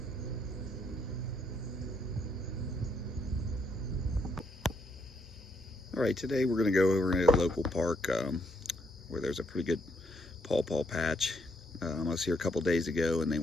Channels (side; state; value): both; normal; correlation 0.74